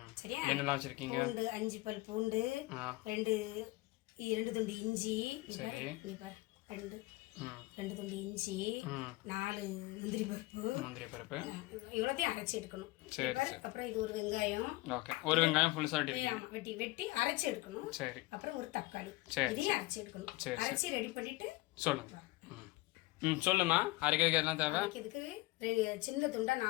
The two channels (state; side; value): quieter; right; 20.8 dB